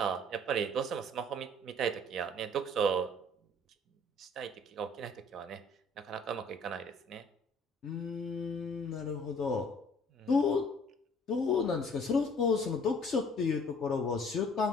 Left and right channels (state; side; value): normal; both; correlation 0.55